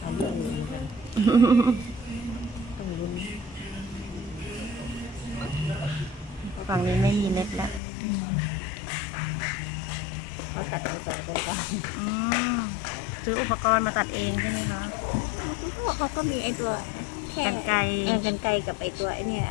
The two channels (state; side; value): drops out; right; at 7.8 s